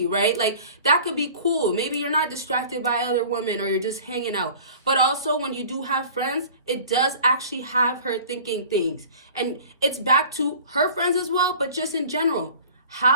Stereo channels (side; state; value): both; inverted; correlation -0.44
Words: right? Like, that could be cool. Maybe you're not distracted by other women or you're just hanging out. But also, when you do have friends, it does actually have her thinking things. And it's back to her friends as well, but just in general.